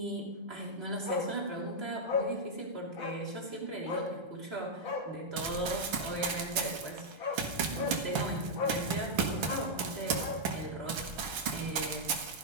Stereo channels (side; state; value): left; late; 1.3 ms